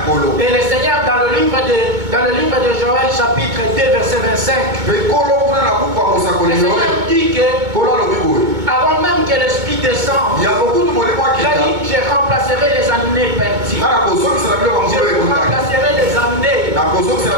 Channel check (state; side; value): late; left; 2.2 ms